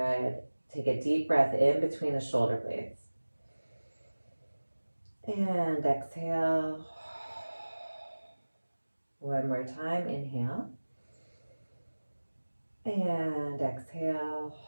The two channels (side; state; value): both; inverted; correlation -1.00